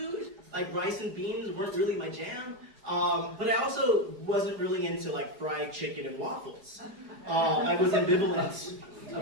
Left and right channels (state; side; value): late; left; 4.8 ms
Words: Rice and beans weren't really my jam. But I also wasn't really into fried chicken and waffles. I was ambivalent